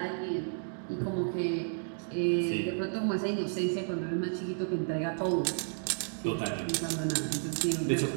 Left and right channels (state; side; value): silent; left; digital silence